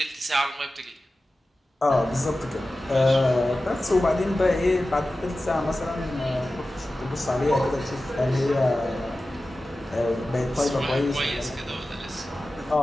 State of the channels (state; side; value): normal; both; correlation 0.95